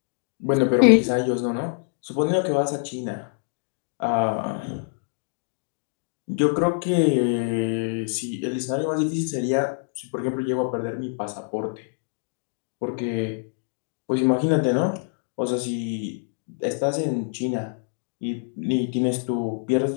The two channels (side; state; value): right; silent; digital silence